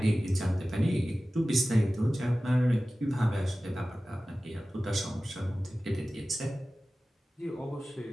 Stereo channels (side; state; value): both; normal; correlation 0.96